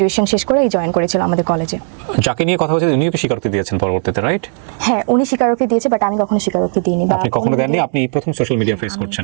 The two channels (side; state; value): left; silent; 57 dB below the other